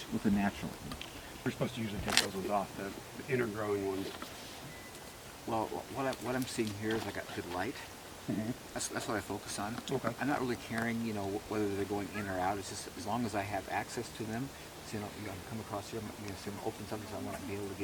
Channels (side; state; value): both; identical; correlation 1.00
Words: with the natural. We're supposed to usually take those ones off, the inner growing ones. Well, what I'm seeing here is I got good light. Mm-hmm. That's what I focus on. Okay. I'm not really caring, whether they're going in or out. It's just as long as I have access to them. So, come across here, I'm going to open something, so I want to be able to